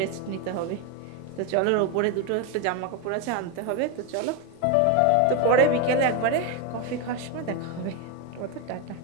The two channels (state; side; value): different; both; correlation 0.02